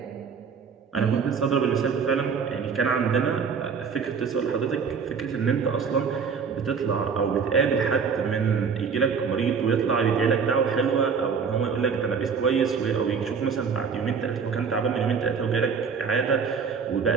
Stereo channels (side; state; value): left; quieter; 6.0 dB